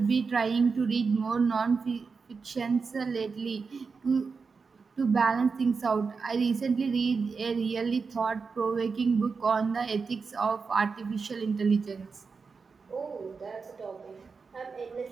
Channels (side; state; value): left; quieter; 4.9 dB